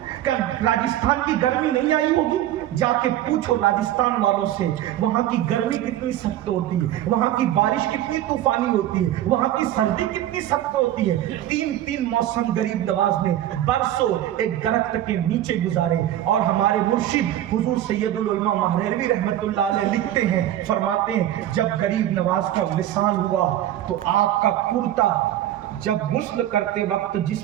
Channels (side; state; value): left; quieter; 12.6 dB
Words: کیا راجستھان کی گرمی نہیں آئی ہوگی؟ جا کے پوچھو راجستھان والوں سے، وہاں کی گرمی کتنی سخت ہوتی ہے، وہاں کی بارش کتنی طوفانی ہوتی ہے، وہاں کی سردی کتنی سخت ہوتی ہے۔ 3 موسم غریب نواز نے برسوں ایک درخت کے نیچے گزارے۔ اور ہمارے مرشد حضور سید العلماء مہروی رحمت اللہ علیہ لکھتے ہیں، فرماتے ہیں جب غریب نواز کا وصال ہوا تو آپ کا کرتا جب غسل کرتے وقت